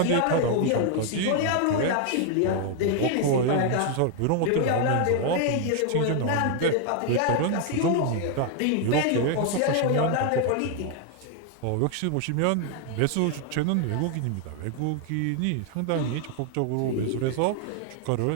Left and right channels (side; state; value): both; different; correlation 0.00